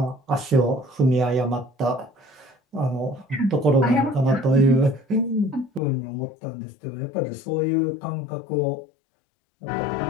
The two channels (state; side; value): drops out; right; at 5.8 s